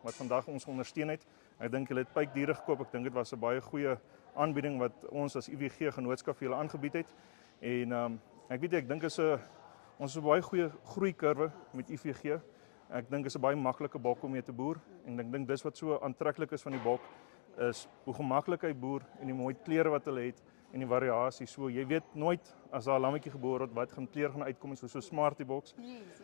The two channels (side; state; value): right; silent; digital silence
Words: wat vandag ons ondersteun het. Ek dink hulle het pypdiere gekoop. Ek dink dit was 'n baie goeie aanbieding wat ons as IVG genootskap vir julle aangebied het. En ek dink ons is 'n baie goeie groeikurwe met IVG. Ek dink is 'n baie maklike bok om mee te boer en ek dink dis wat so aantreklik is van die bok is hoe gemaklik hy boer en die mooi kleure wat hulle het en die variasie. So jy weet nooit as daar 'n lammetjie gebore word wat gaan kleur gaan uitkom so Smarty boks. Yes,